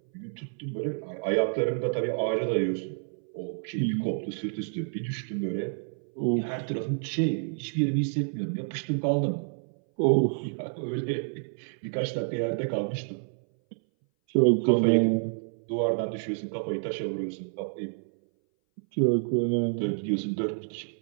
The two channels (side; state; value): left; silent; 59 dB below the other